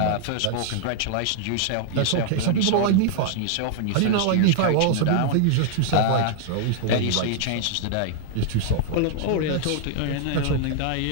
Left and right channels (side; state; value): both; different; correlation -0.01